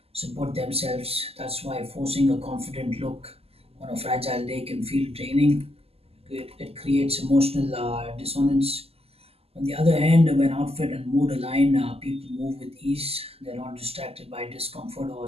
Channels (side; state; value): left; late; 0.29 ms